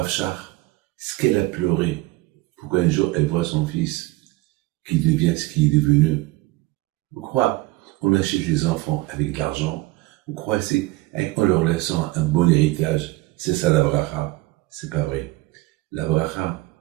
Shach, ce qu'elle a pleuré, pour qu'un jour elle voit son fils qui devient ce qu'il est devenu. Vous croyez, on achète les enfants avec de l'argent, vous croyez, c'est en leur laissant un bon héritage, c'est ça la bracha? C'est pas vrai. La bracha,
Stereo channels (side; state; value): left; quieter; 19.9 dB